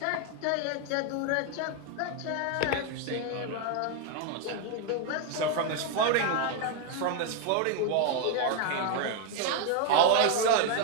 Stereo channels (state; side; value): different; both; correlation 0.01